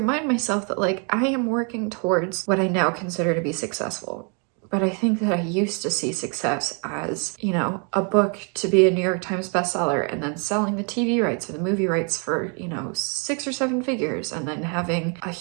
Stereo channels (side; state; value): left; quieter; 37.9 dB